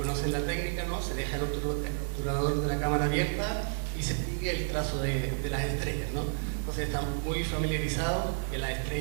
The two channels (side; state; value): left; silent; digital silence